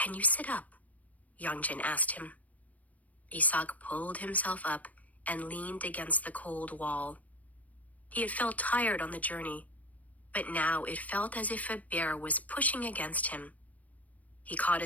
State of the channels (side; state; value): right; late; 0.072 ms